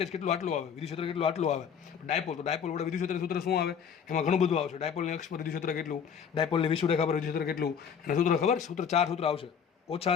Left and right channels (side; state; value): right; quieter; 7.3 dB